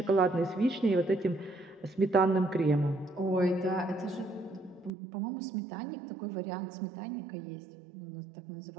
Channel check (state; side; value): drops out; left; at 4.9 s